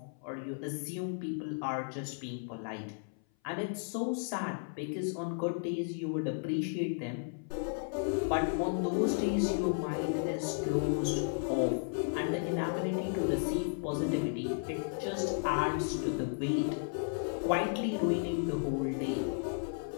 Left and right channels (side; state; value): right; silent; 55 dB below the other